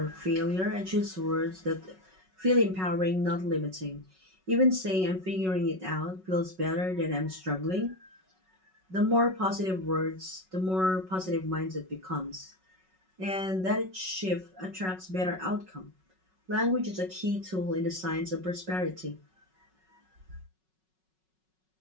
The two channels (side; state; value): left; late; 5.4 ms